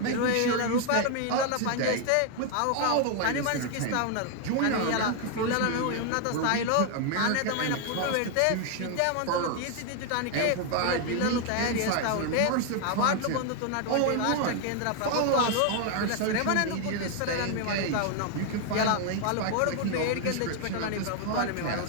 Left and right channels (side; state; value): both; different; correlation 0.00